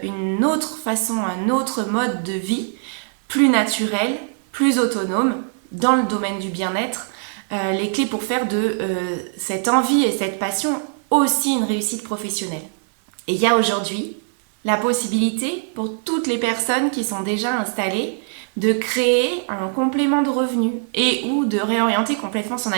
une autre façon, un autre mode de vie, plus naturel, plus autonome, dans le domaine du bien-être, les clés pour faire de cette envie et cette passion aussi une réussite professionnelle. Et il y a aujourd'hui la possibilité pour toutes les personnes qui sont déjà installées de créer un complément de revenus et ou de réorienter complètement son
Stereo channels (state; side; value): silent; left; 61 dB below the other